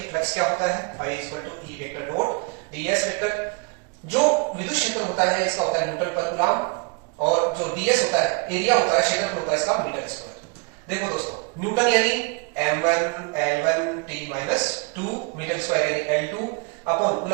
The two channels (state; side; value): quieter; left; 31.9 dB